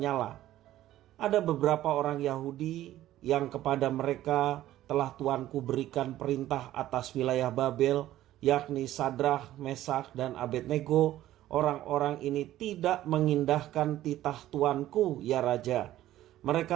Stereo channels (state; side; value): quieter; left; 13.9 dB